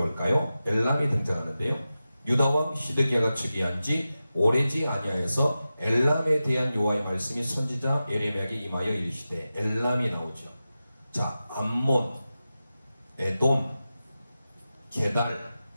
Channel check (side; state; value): both; inverted; correlation -0.93